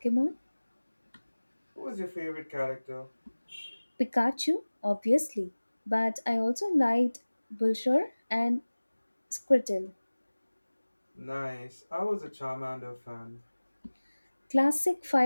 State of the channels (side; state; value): both; inverted; correlation -1.00